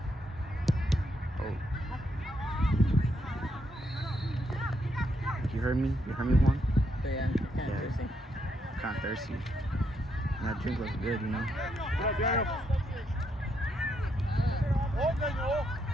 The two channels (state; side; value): normal; both; correlation 0.77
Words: Oh. You heard me? You heard me, Juan? Yeah, kind of thirsty. I'm kinda thirsty. And that drink looks good, you know? Get up, Daniel. We'll take it.